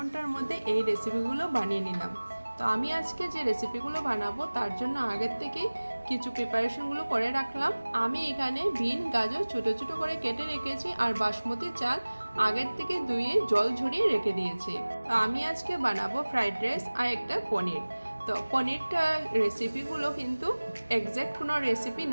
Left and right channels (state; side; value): inverted; both; correlation -1.00